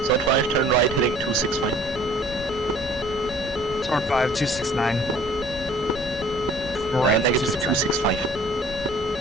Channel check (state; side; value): normal; both; correlation 0.53